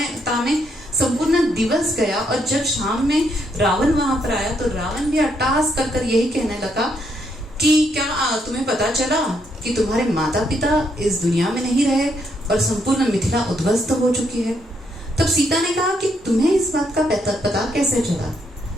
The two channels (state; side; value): normal; both; correlation 0.75